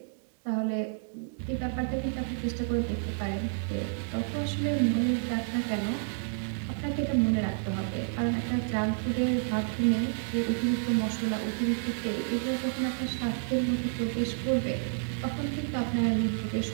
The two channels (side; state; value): left; silent; digital silence